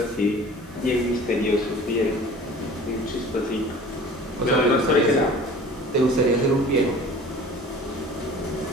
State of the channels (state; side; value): normal; both; correlation 0.44